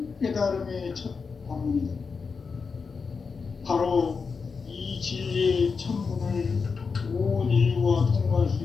깨달음의 첫 관문이다. 바로 이 진리의 첫 문을 온 인류가 통과할 수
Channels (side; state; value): right; quieter; 5.1 dB